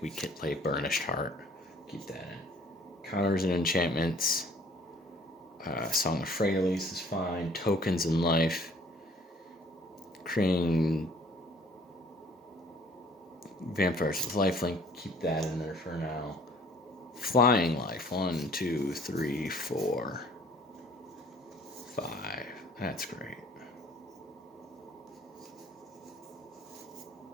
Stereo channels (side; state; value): both; normal; correlation 0.55